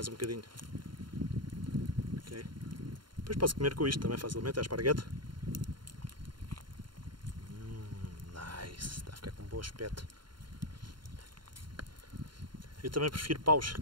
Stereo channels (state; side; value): late; left; 0.72 ms